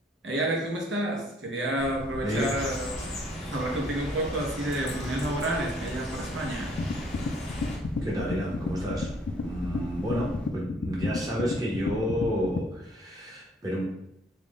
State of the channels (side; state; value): both; normal; correlation 0.61